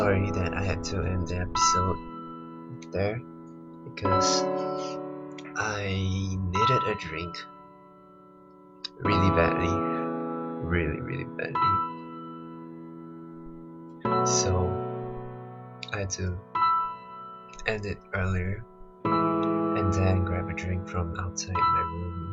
that I had to end the episode there because I needed a drink really badly. Really badly. So I had to end it earlier and then grab a drink from outside my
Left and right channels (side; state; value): both; identical; correlation 1.00